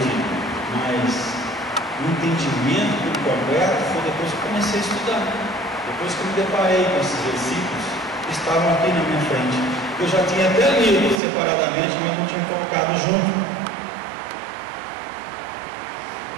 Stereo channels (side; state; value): left; drops out; at 11.2 s